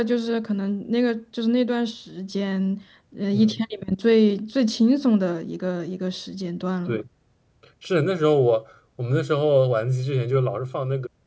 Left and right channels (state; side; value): identical; both; correlation 1.00